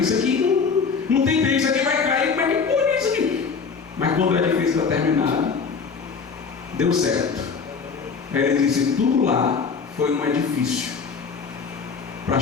aqui não tem bem, isso aqui vai cair, como é que pode isso aqui? Mas quando o edifício está terminado, deu certo. Aí ele disse: tudo lá foi um edifício para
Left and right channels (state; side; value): quieter; right; 5.4 dB